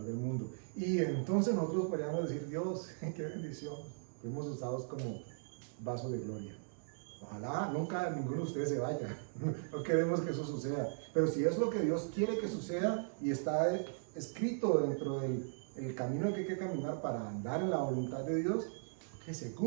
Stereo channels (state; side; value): silent; left; digital silence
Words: del mundo. Y entonces nosotros podríamos decir: Dios, qué bendición, fuimos usados como vaso de gloria. Ojalá nunca ninguno de ustedes se vaya, no queremos que eso suceda, pero si es lo que Dios quiere que suceda y está escrito dentro del camino que hay que caminar para andar en la voluntad de Dios, que se